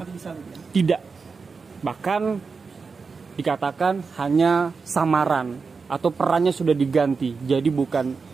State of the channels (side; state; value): left; quieter; 4.8 dB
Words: mati di salib ya? Tidak. Bahkan dikatakan hanya samaran atau perannya sudah diganti. Jadi